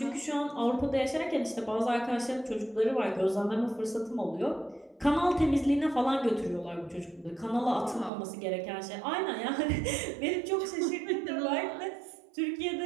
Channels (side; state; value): left; drops out; at 8.1 s